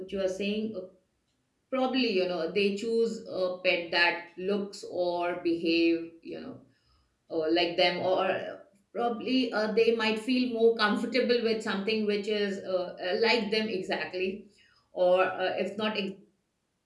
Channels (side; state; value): both; identical; correlation 1.00